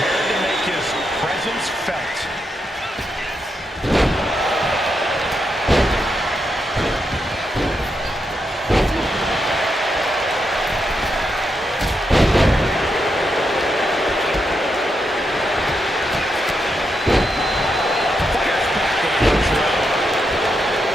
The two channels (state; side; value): normal; both; correlation 0.83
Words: to make his presence felt.